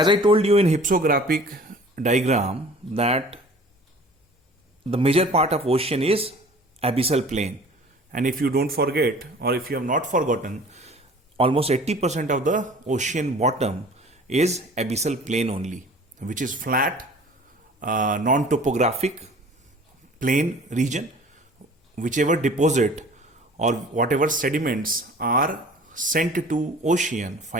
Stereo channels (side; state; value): both; normal; correlation 0.47